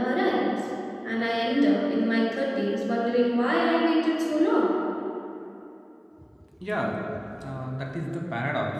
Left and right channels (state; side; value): identical; both; correlation 1.00